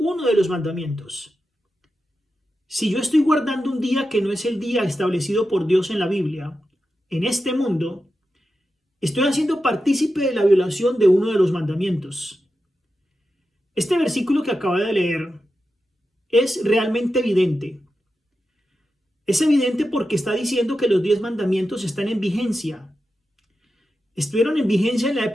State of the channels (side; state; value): both; normal; correlation 0.90